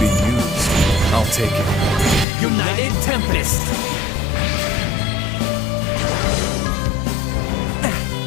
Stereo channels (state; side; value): drops out; right; at 2.2 s